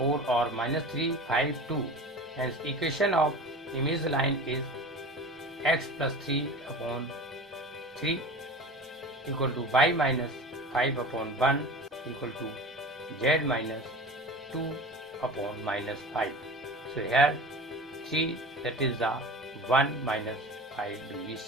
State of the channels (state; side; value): normal; both; correlation 0.34